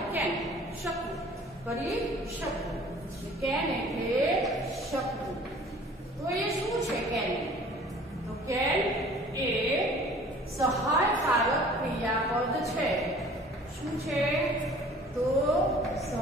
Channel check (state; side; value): normal; both; correlation 0.50